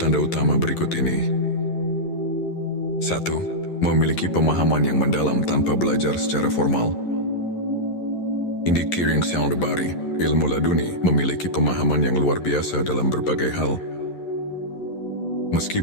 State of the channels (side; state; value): right; late; 11 ms